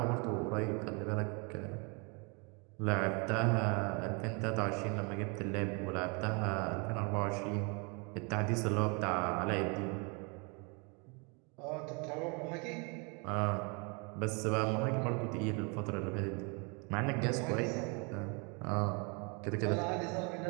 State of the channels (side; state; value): left; quieter; 32.6 dB